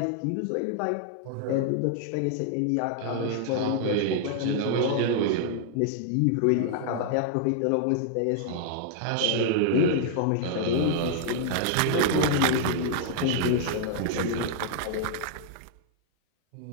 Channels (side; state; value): both; different; correlation -0.01